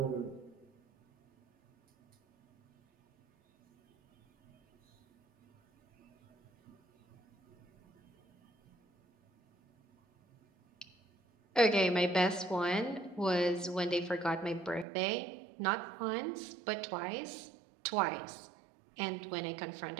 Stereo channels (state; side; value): drops out; left; at 14.9 s